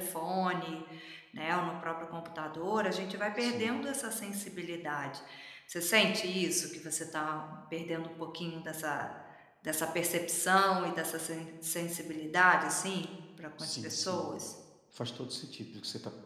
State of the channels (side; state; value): both; identical; correlation 1.00